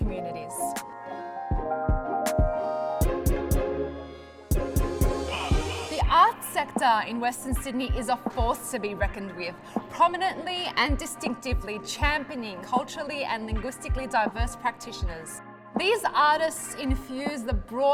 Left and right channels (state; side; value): identical; both; correlation 1.00